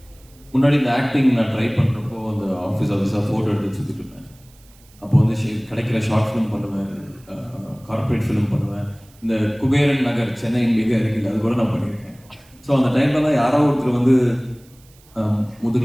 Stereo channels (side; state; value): right; noise; hiss, 28 dB below the sound